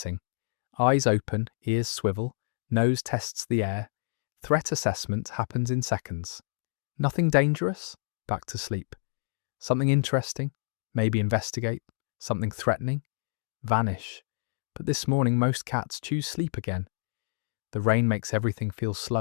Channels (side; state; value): right; silent; digital silence